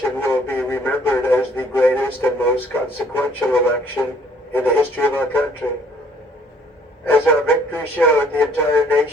will be remembered as the greatest and most consequential election in the history of our country. As our victory showed, the entire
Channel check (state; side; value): normal; both; correlation 0.60